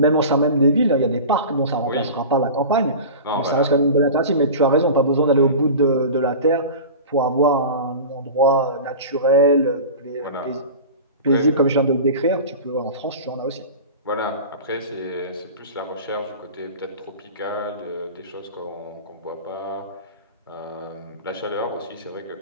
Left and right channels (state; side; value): inverted; both; correlation -0.33